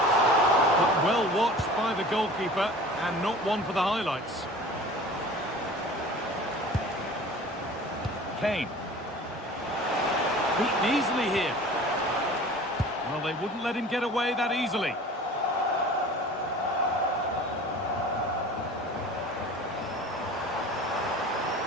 But well watched by the goalkeeper, and not one for the highlights. Kane. Beaten easily here. Well, they wouldn't let him get away that easily.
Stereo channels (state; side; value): normal; both; correlation 0.42